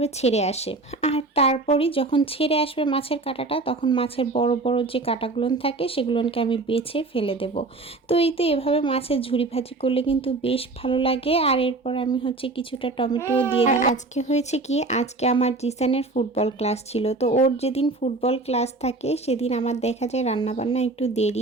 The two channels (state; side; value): quieter; left; 3.3 dB